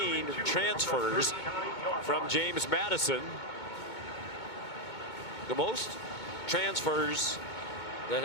transfers from James Madison. The most transfers that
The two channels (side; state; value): right; late; 2.2 ms